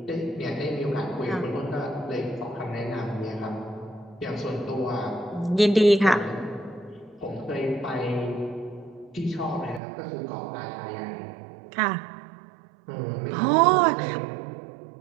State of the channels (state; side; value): drops out; left; at 9.8 s